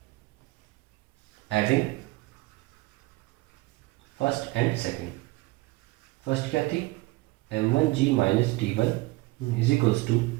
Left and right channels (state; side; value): quieter; left; 21.2 dB